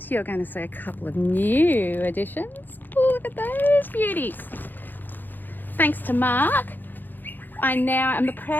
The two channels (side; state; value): right; late; 0.089 ms